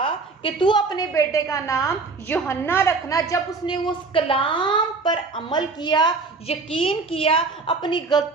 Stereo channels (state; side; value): quieter; left; 4.1 dB